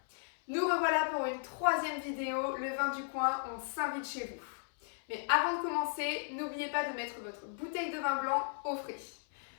Nous revoilà pour une troisième vidéo, le vin du coin, on s'invite chez vous. Mais avant de commencer, n'oubliez pas de mettre votre bouteille de vin blanc au frais.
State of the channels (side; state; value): right; silent; 54 dB below the other